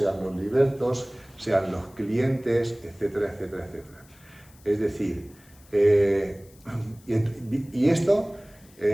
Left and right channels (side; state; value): left; noise; hiss, 27 dB below the sound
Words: los libertos, sean los clientes, etcétera, etcétera, etcétera. Es decir, y esto